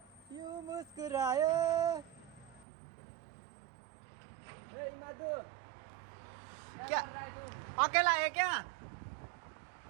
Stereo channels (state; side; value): drops out; left; at 2.7 s